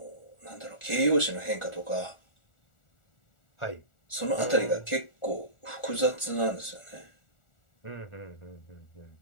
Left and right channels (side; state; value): right; late; 1.4 ms